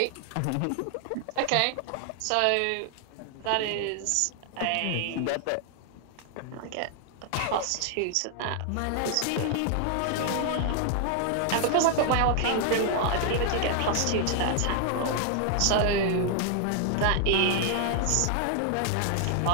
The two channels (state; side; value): different; both; correlation 0.00